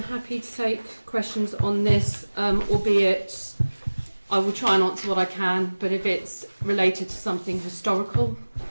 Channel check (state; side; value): inverted; both; correlation -1.00